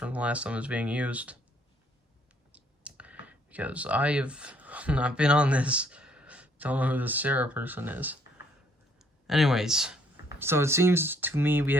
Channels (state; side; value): normal; both; correlation 0.65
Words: the last time it was being used, because I have not been on this. Don't know who this Sarah person is. Anyways, so it seems to me we